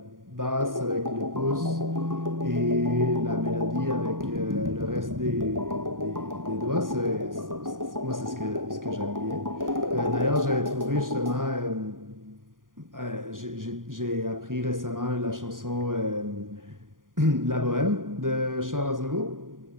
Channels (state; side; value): late; left; 0.90 ms